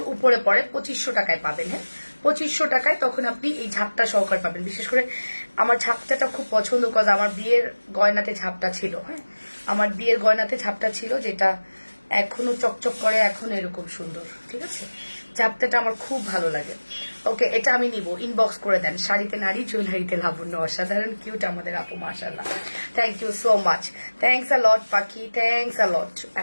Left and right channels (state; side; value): inverted; both; correlation -1.00